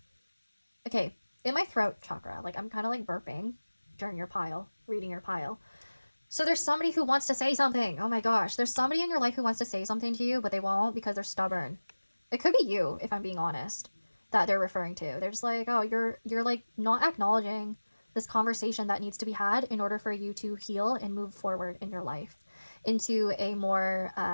Okay, in my throat chakra, like I'm kind of like burping during your pile, reading your pile. So there's somebody who wants to say something. Oh my gosh, there's somebody in your life who wants to say something to you, but they won't because they're stubborn. It could be you, if I'm being honest, that they're referring to. They're just like, oh, you're like not acknowledging this conversation that needs to be had in order for you to heal and move forward in your life into a more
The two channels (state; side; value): inverted; both; correlation -1.00